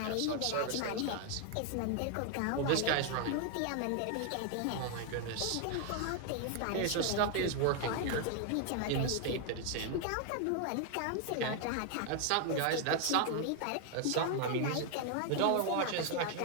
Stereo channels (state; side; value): different; both; correlation 0.00